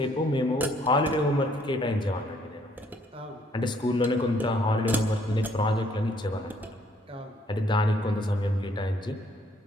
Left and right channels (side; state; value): both; normal; correlation 0.65